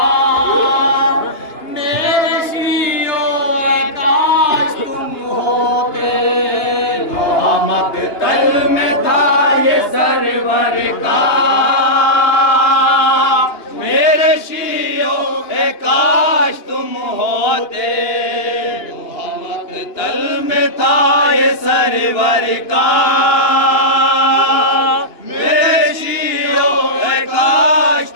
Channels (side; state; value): right; late; 2.9 ms